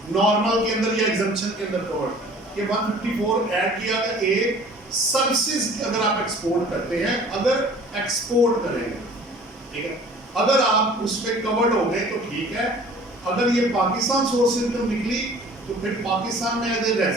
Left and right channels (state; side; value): normal; both; correlation 0.48